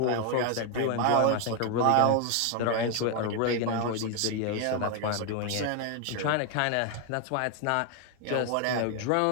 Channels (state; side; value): different; both; correlation 0.01